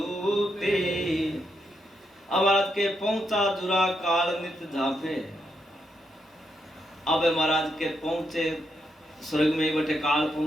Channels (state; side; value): normal; both; correlation 0.81